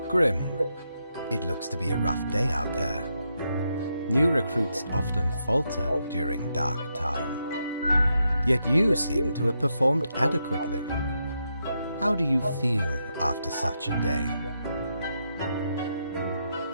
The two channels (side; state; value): both; inverted; correlation -0.82